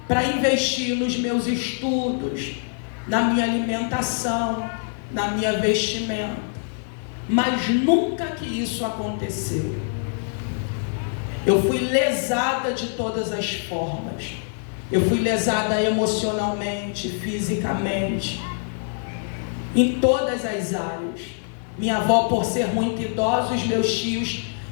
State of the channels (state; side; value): silent; right; digital silence